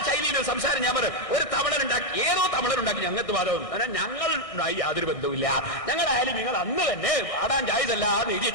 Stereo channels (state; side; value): late; right; 1.6 ms